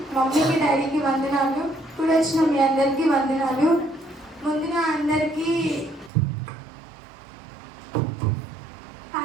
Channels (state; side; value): drops out; left; at 6.1 s